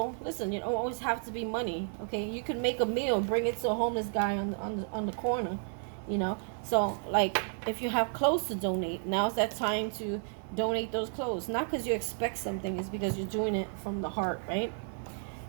listen, you don't always have to be money. Okay, you can make a meal, bring it to a homeless guy on the corner, you know. So like, if you have clothes to donate, now's that time to donate those clothes. Not because you expect something, it's because you're doing it from the heart, right?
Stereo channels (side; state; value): left; silent; 56 dB below the other